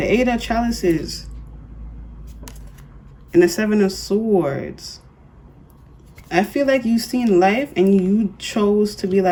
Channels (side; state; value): both; identical; correlation 1.00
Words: 8 of Chalices. And the 7 of Swords. I feel like you've seen life and you chose to be